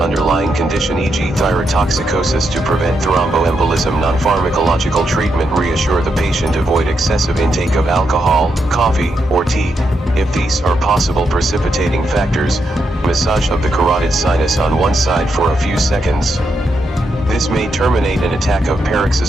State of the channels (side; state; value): both; normal; correlation 0.82